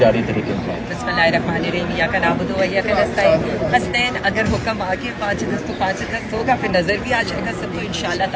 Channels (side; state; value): both; identical; correlation 1.00